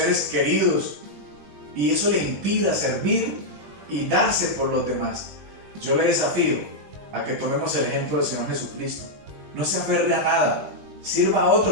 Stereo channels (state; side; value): late; left; 20 ms